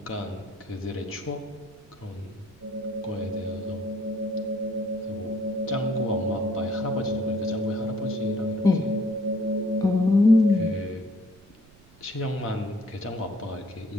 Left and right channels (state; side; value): noise; right; rumble, 27 dB below the sound